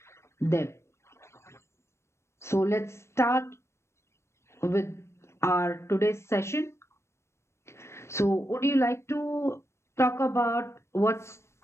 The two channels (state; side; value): late; right; 0.13 ms